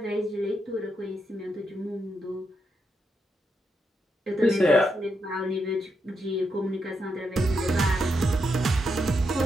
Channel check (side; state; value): both; normal; correlation 0.82